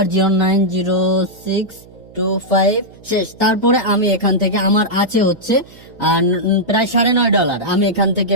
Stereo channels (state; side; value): noise; right; hum, 23 dB below the sound